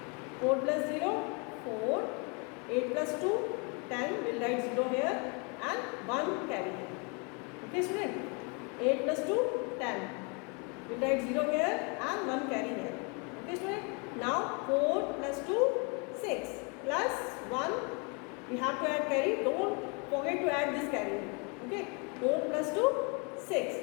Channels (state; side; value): quieter; right; 33.4 dB